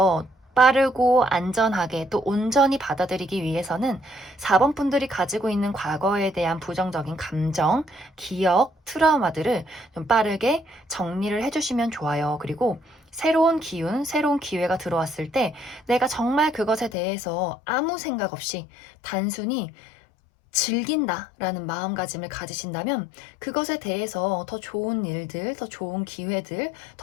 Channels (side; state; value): right; drops out; at 16.9 s